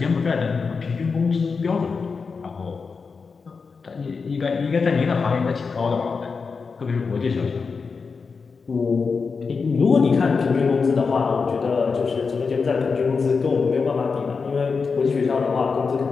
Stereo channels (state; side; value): quieter; right; 5.0 dB